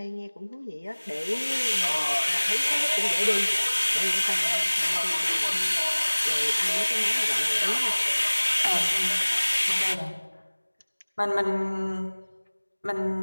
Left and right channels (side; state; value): both; inverted; correlation -1.00